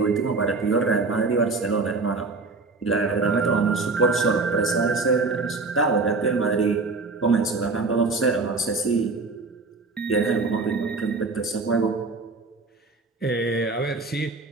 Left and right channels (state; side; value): quieter; left; 3.8 dB